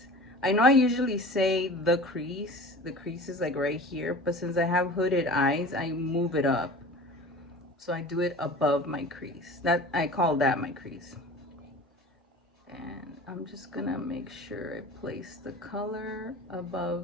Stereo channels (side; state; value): both; normal; correlation 0.39